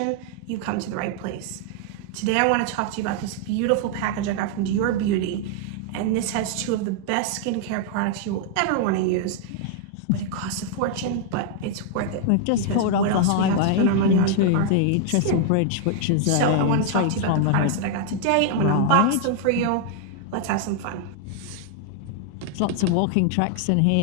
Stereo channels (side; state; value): both; different; correlation 0.00